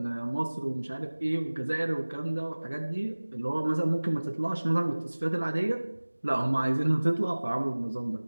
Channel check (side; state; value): both; inverted; correlation -1.00